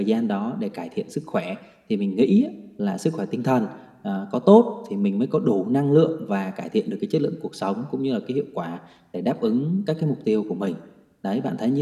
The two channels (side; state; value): both; identical; correlation 1.00